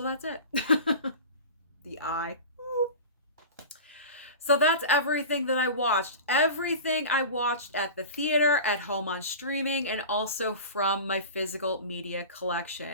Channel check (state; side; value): inverted; both; correlation -0.33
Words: that's it. The eye. So that's everything that I watched. Everything I watched at the theater, at home on streaming, and also from my physical media